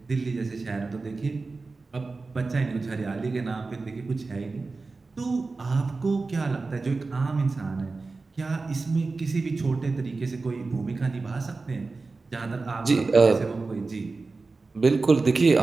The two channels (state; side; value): quieter; left; 3.8 dB